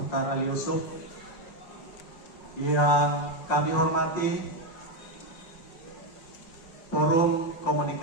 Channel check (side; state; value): right; late; 5.6 ms